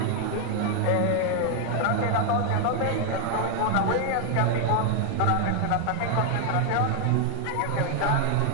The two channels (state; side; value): different; both; correlation 0.00